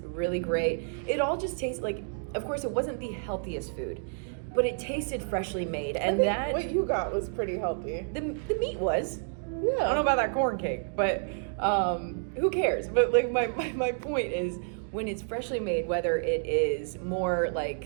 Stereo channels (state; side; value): silent; left; digital silence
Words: great. It all just tasted like, of course, it wasn't the healthiest food, but it tasted freshly made. And that what you got was pretty healthy. The meat was. Yeah. I don't know about that corn cake, but who cares? But like my point is, when it's freshly made, whether it is more